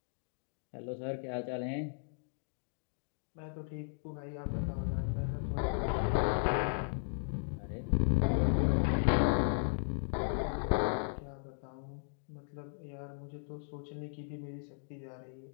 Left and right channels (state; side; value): silent; right; digital silence